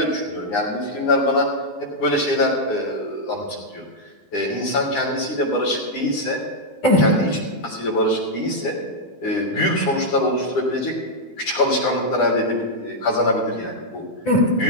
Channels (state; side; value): late; right; 9.9 ms